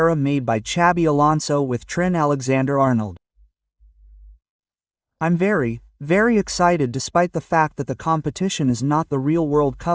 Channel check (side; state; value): both; identical; correlation 1.00